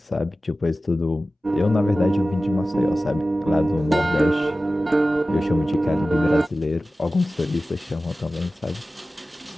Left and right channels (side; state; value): both; normal; correlation 0.95